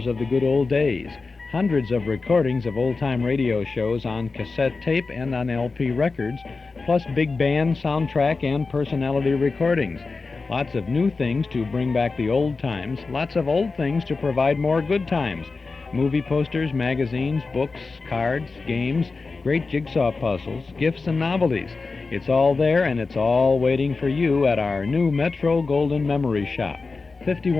of the good old days. Hundreds of recordings of old-time radio shows on cassette tape and on LP records, plus big band, soundtrack, and personality recordings. Lots of new things to bring back the old times, lots of old things to provide more good times. Movie posters, magazines, books, cards, games, great jigsaw puzzles, gifts and novelties. It's all there, and it's all waiting for you at our new Metro Golden Memory Shop,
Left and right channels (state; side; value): quieter; right; 4.1 dB